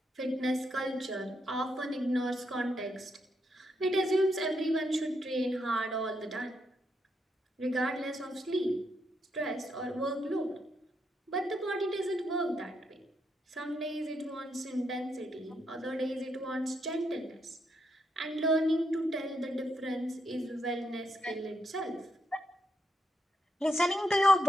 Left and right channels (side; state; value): both; normal; correlation 0.81